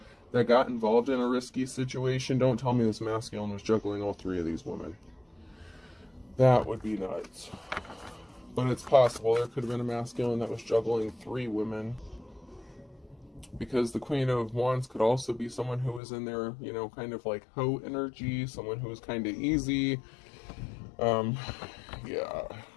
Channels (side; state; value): right; drops out; at 16.0 s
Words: that got involved in a risky situation. Don't tell me this masculine was juggling all three of these women. That would be nuts. But it's possible there could have been a masculine that was juggling three women. Because the Queen of Wands could also be someone who was in there, kind of like hoe energy, someone who was kind of easy. Yeah.